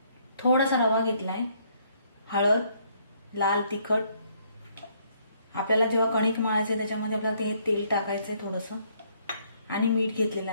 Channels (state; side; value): inverted; both; correlation -0.68